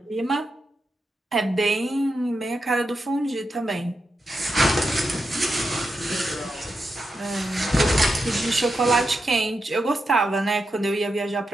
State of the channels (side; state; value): both; normal; correlation 0.87